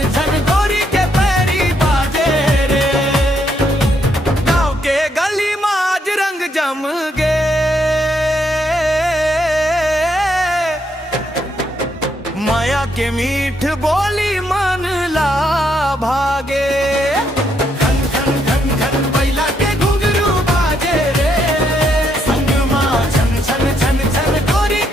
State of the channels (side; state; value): both; normal; correlation 0.75